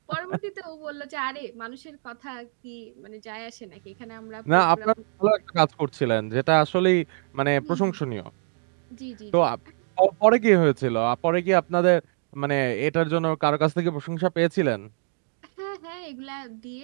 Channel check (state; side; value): silent; left; 58 dB below the other